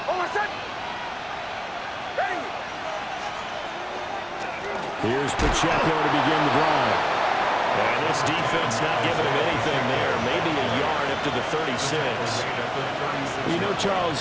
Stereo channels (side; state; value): both; identical; correlation 1.00